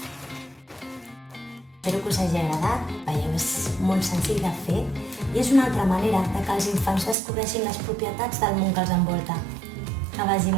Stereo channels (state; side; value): drops out; left; at 7.2 s